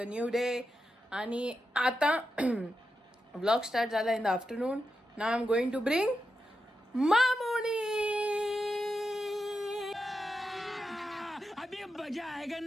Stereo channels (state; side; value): normal; both; correlation 0.88